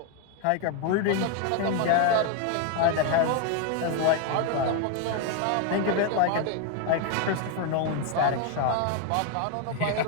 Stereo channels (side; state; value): both; different; correlation 0.01